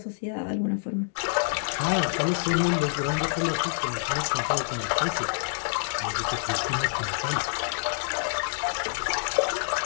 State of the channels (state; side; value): silent; right; digital silence